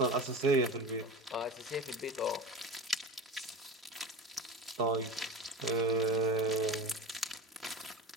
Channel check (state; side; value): normal; both; correlation 0.30